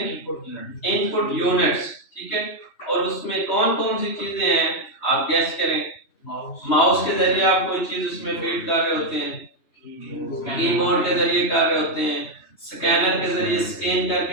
Input units. ठीक है, और उसमें कौन कौन सी चीजें हैं आप गैस करें। माउस के जरिए आप कोई चीज उसमें फीड कर रहे होते हैं, कीबोर्ड के जरिए कर रहे होते हैं, स्कैनर के जरिए स्कैन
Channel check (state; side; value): late; right; 3.0 ms